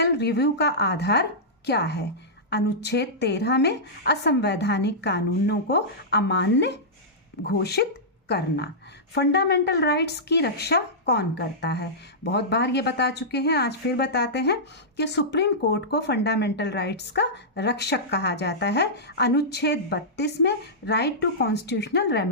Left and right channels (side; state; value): both; normal; correlation -0.14